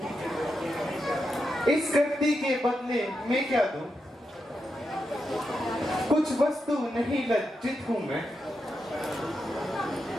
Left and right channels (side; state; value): both; normal; correlation 0.86